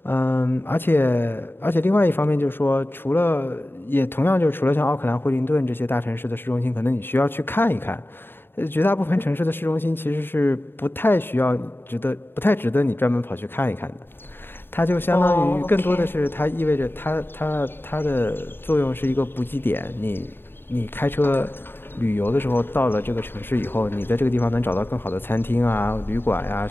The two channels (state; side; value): late; right; 0.10 ms